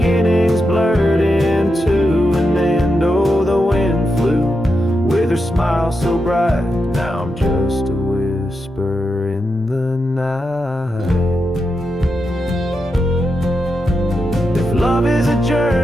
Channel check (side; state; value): both; normal; correlation 0.86